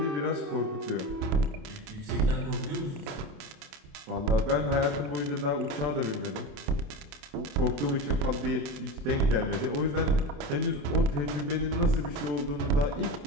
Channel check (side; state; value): left; late; 28 ms